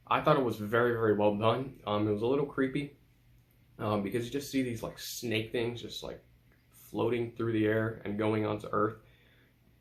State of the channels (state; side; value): identical; both; correlation 1.00